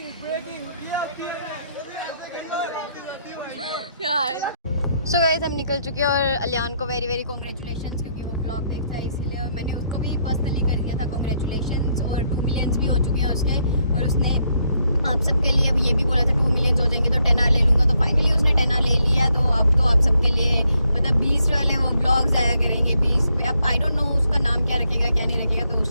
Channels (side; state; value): both; inverted; correlation -0.75